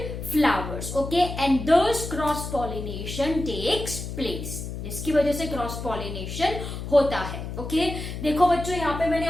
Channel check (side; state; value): left; noise; hum, 7 dB below the sound